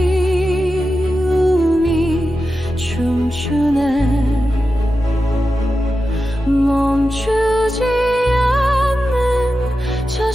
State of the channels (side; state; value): both; normal; correlation 0.91